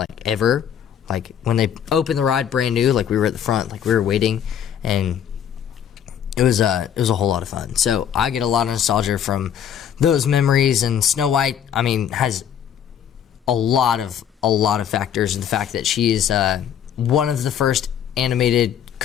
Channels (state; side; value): quieter; right; 9.0 dB